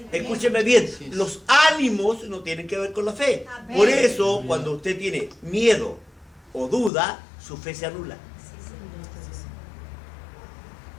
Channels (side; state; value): right; drops out; at 6.9 s